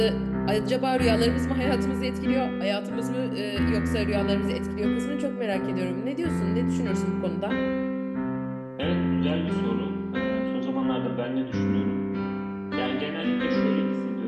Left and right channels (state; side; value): identical; both; correlation 1.00